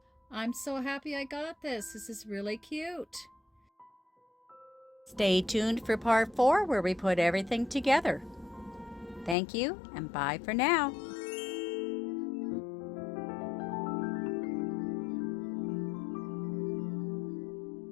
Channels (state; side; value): drops out; right; at 9.3 s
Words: I'm so happy I got this. This is really cute. Stay tuned for part 4 where we put everything together. Thank you and bye for now.